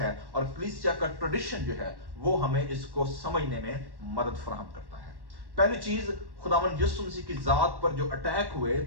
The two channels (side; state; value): left; late; 1.1 ms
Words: और कलीसिया का ट्रेडिशन जो है वो हमें इसको समझने में मदद फराहम करता है। पहली चीज, खुदावंद यीशु मसीह की जात पर जो अटैक हुए